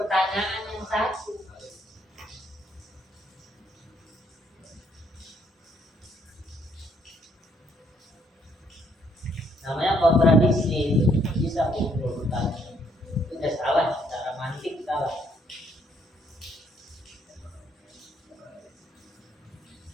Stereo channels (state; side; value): normal; both; correlation 0.69